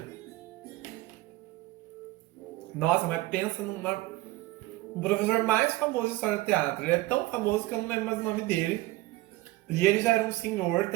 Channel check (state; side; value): quieter; left; 18.5 dB